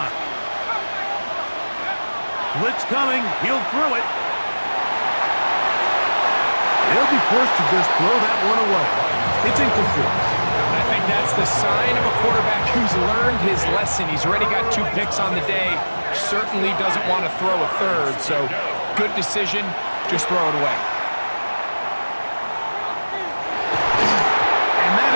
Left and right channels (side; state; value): both; inverted; correlation -1.00